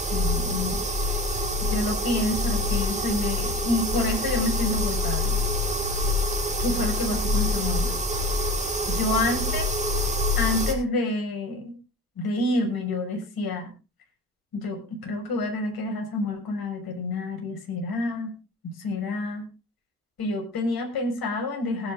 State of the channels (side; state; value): both; normal; correlation 0.36